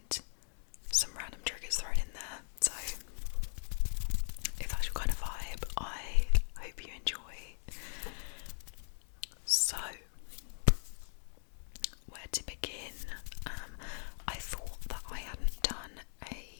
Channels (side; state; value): right; silent; 52 dB below the other